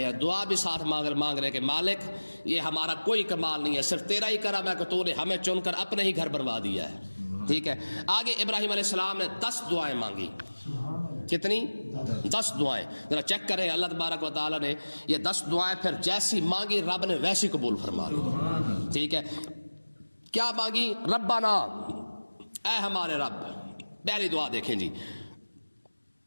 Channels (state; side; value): inverted; both; correlation -1.00